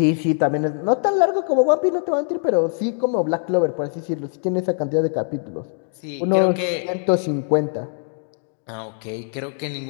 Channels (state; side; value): silent; right; 64 dB below the other